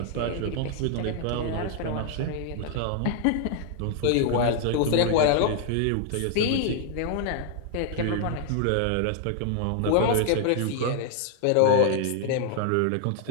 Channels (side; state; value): both; different; correlation 0.00